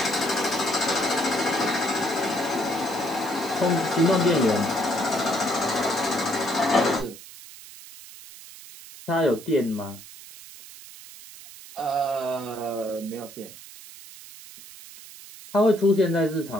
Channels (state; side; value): noise; right; hiss, 17 dB below the sound